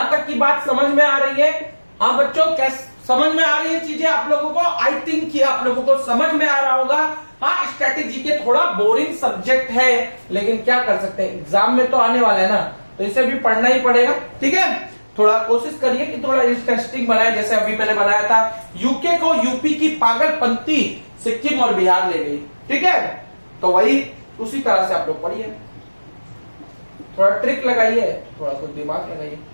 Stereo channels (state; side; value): inverted; both; correlation -1.00